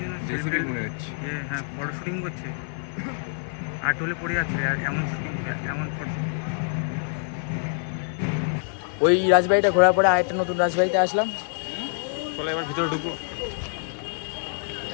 জন্য হ্যাঁ ফটো শুটিং করছে, আর টোলে পড়ে যাচ্ছে, আর এমন শুটিং, এমন ফটো। ওই রাজবাড়িটা ঘোরার পরে আরেকটা নতুন রাজবাড়িতে আসলাম। চলো এবার ভিতরে ঢুকবো।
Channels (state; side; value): silent; right; digital silence